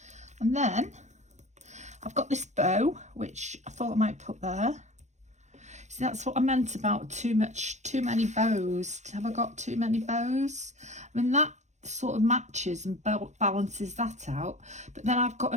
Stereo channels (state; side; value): late; left; 0.34 ms